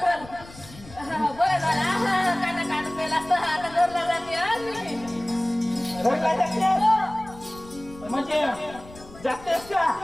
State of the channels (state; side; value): noise; left; rumble, 19 dB below the sound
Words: बरं. बरं झालं काटा काट पेला असता आता घरला जाते हा मी. घरला जातेस? म्हणजे जातेस का